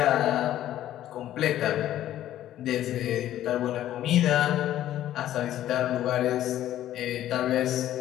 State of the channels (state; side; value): quieter; right; 12.7 dB